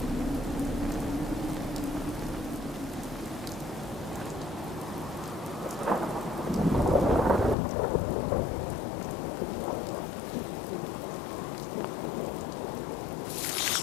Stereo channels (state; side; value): drops out; right; at 7.6 s